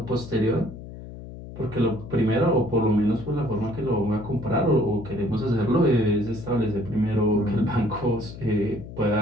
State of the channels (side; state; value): left; noise; hum, 13 dB below the sound